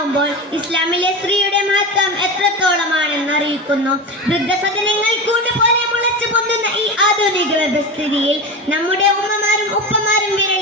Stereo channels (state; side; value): normal; both; correlation 0.24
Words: ഇസ്ലാമിലെ സ്ത്രീയുടെ മഹത്വം എത്രത്തോളമാണെന്ന് അറിയിക്കുന്നു. വൃദ്ധസദനങ്ങൾ കൂടുപോലെ മുളച്ചു പൊന്തുന്ന ഈ ആധുനിക വ്യവസ്ഥിതിയിൽ നമ്മുടെ ഉമ്മമാരും ഉപ്പമാരും